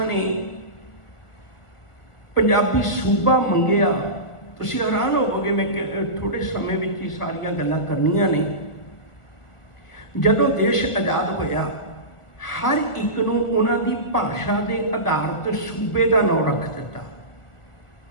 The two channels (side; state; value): right; late; 1.4 ms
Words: ने पंजाबी सूबा मंगिया, तुसीं हैरान होवोगे। मैं थोड़े समय में ही सारियां गल्लां करनियां ने। जदों देश आज़ाद होया, हर एक नूं उन्हां दी भाषा के आधार ते सूबे का नाम रख दिता।